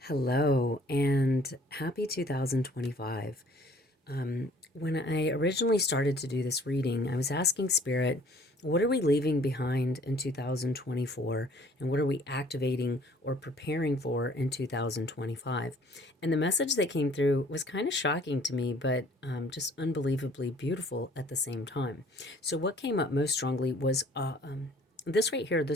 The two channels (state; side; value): normal; both; correlation 0.55